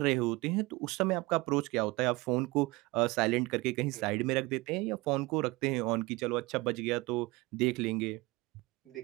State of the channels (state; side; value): quieter; left; 22.8 dB